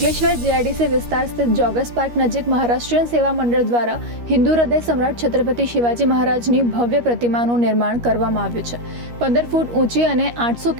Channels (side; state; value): left; late; 13 ms